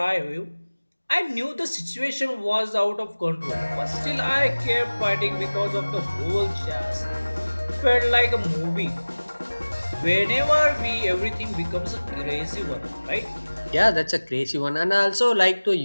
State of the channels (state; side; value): inverted; both; correlation -1.00